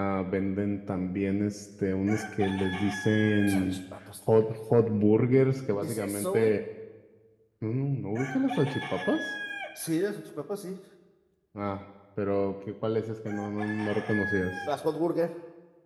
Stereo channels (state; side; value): identical; both; correlation 1.00